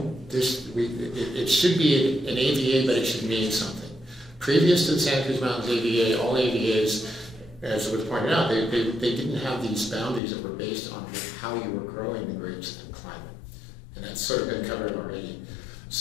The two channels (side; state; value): right; drops out; at 10.2 s